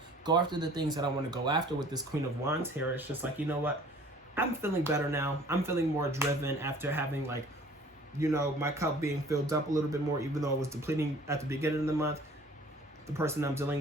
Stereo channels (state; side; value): normal; both; correlation 0.50